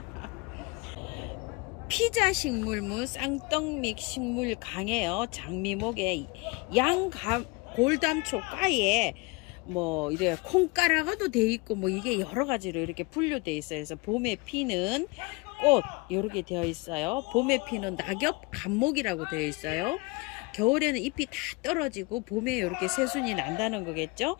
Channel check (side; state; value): right; quieter; 26.3 dB